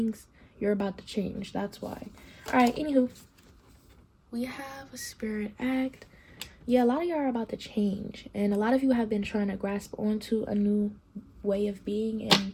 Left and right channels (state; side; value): identical; both; correlation 1.00